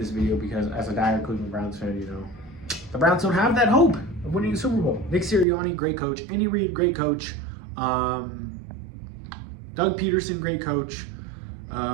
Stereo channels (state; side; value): drops out; left; at 5.5 s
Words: video because as a dire Cleveland Browns fan, the Browns don't have that hope of winning the Super Bowl. Nick Sirianni, great coach. Andy Reid, great coach. Doug Peterson, great coach.